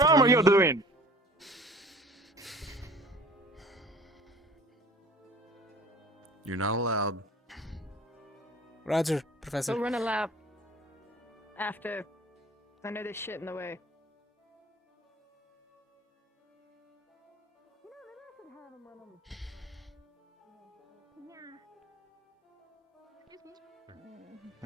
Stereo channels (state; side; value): normal; both; correlation 0.47